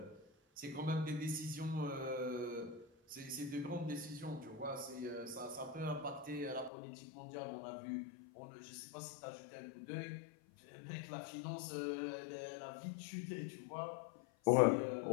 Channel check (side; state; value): right; drops out; at 6.7 s